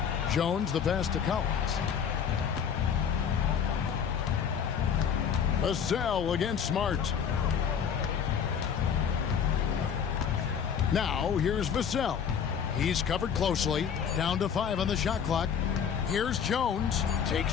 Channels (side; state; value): right; quieter; 7.5 dB